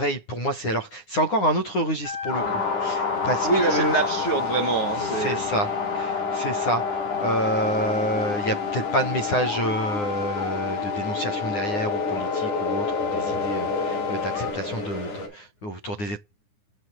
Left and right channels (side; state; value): right; late; 9.8 ms